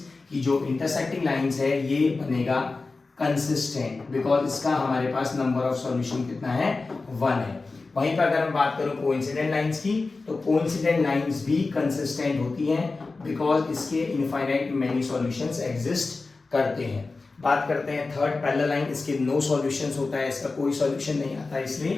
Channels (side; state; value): right; quieter; 3.8 dB